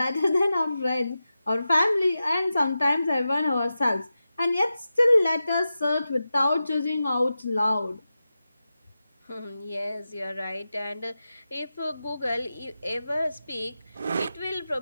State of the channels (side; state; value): both; inverted; correlation -0.92